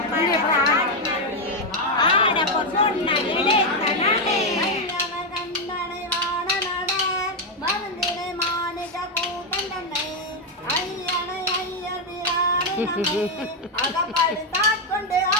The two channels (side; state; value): both; normal; correlation 0.04